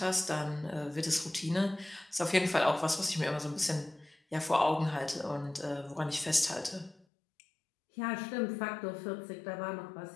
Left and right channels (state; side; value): drops out; right; at 7.1 s